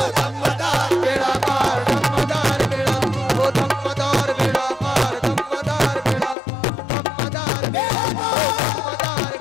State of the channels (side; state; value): right; drops out; at 6.4 s